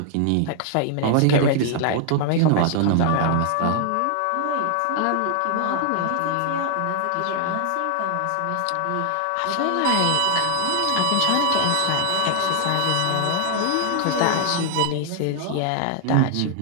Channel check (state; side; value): different; both; correlation 0.00